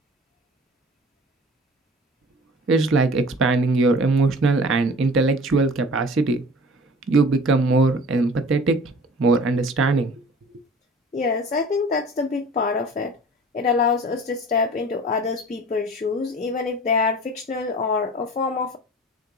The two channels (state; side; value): normal; both; correlation 0.44